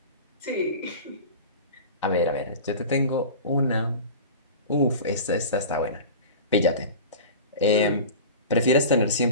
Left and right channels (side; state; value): both; inverted; correlation -0.34